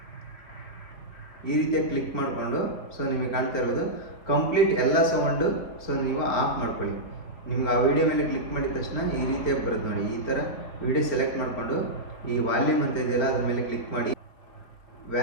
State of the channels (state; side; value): late; right; 4.2 ms